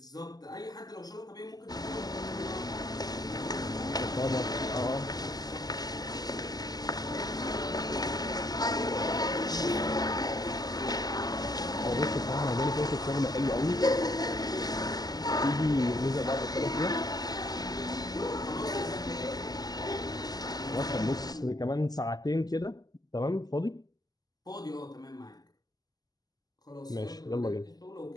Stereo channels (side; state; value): right; late; 0.19 ms